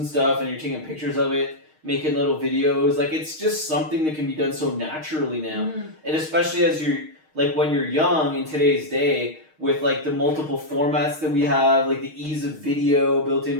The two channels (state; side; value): late; left; 6.4 ms